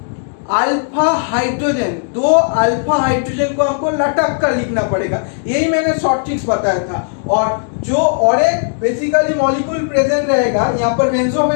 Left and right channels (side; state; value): right; silent; digital silence